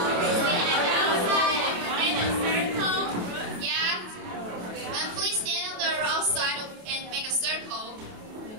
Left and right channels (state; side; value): late; left; 28 ms